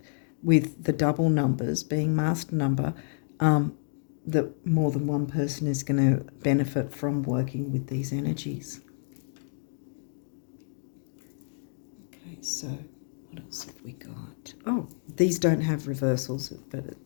with the double numbers being master number, that more than one person is going to benefit from working with these energies. Okay, so what else have we got? Oh, these don't have reversals, but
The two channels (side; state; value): right; silent; digital silence